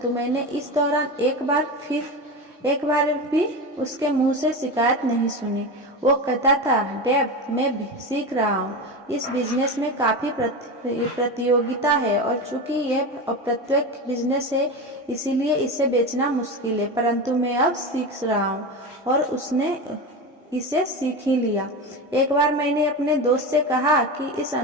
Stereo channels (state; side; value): normal; both; correlation 0.23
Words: मैंने इस दौरान एक बार भी उसके मुंह से शिकायत नहीं सुनी। वो कहता था, डेव, मैं सीख रहा हूँ। इस बिजनेस में काफी प्रतियोगिता है, और चूंकि यह अप्रत्यक्ष बिजनेस है, इसीलिए इसे बेचना मुश्किल है, परंतु मैं अब सीख रहा हूँ। और उसने इसे सीख ही लिया। एक बार मैंने अपने दोस्त से कहा कि इस